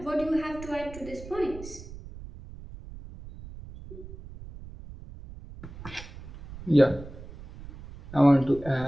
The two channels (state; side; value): noise; right; rumble, 15 dB below the sound